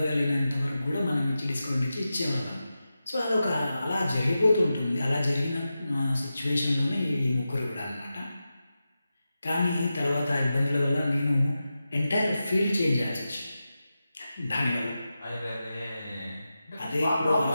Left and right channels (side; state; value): both; inverted; correlation -0.92